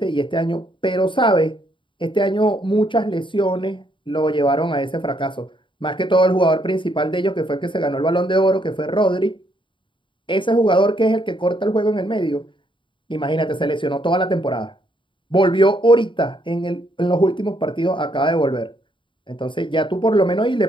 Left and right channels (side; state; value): right; late; 0.24 ms